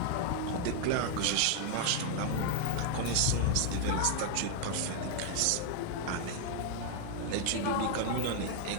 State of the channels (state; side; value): different; both; correlation 0.00